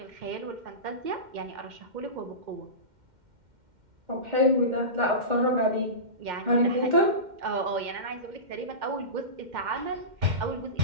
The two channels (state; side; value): late; left; 2.1 ms